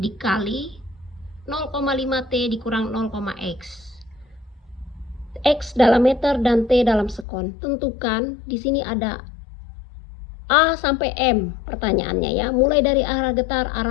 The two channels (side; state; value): right; drops out; at 7.2 s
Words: 0,5 T dikurang 0,x. X dalam meter dan T dalam sekon. Tentukan, di sini ada A sampai M pertanyaannya ya. Mulai dari arah getar,